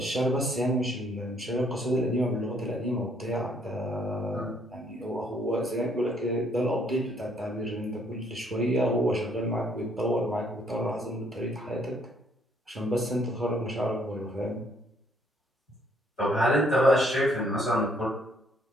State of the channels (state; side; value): normal; both; correlation 0.66